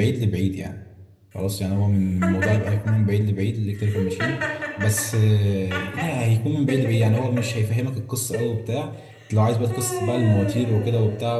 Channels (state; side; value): identical; both; correlation 1.00